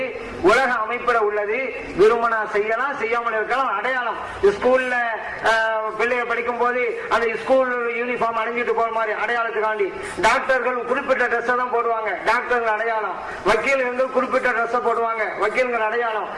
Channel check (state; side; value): identical; both; correlation 1.00